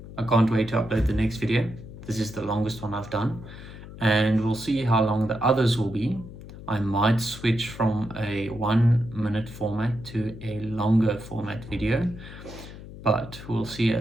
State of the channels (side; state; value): left; noise; hum, 14 dB below the sound